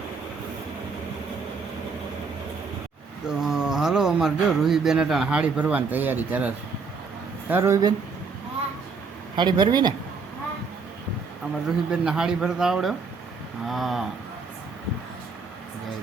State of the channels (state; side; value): quieter; left; 4.8 dB